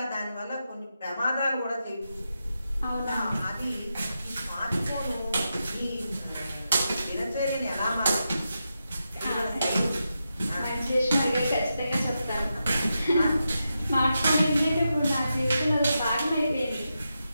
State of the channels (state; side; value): inverted; both; correlation -0.88